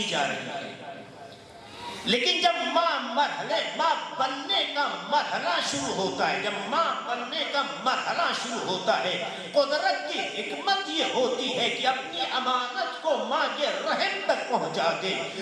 جا رہی ہے، لیکن جب ماں بننے کا مرحلہ شروع ہوتا ہے، جب ماں بننے کا مرحلہ شروع ہوتا ہے، قدرت کی حکمت یہ ہوتی ہے کہ اپنی امانت کو ماں کے رحم تک پہنچا دے۔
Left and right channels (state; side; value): identical; both; correlation 1.00